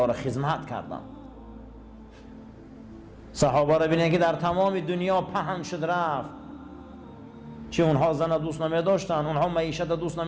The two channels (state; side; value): identical; both; correlation 1.00